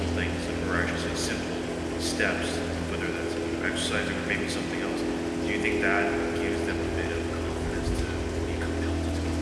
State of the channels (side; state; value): both; identical; correlation 1.00